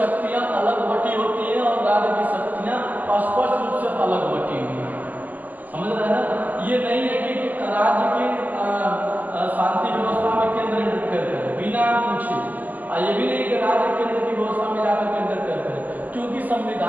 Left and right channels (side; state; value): left; late; 0.082 ms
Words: अलग बटी होती हैं और राज्य की शक्तियां स्पष्ट रूप से अलग बटी हुई हैं। समझ रहे हैं ना? ये नहीं है कि राज्य की शांति व्यवस्था में केंद्र इंटरफेयर करे बिना पूछे, और ये भी नहीं कि राज्य केंद्र की व्यवस्था में जाकर इंटरफेयर करे, क्योंकि